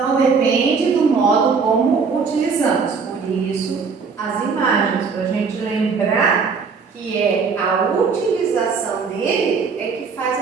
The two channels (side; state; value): left; quieter; 5.3 dB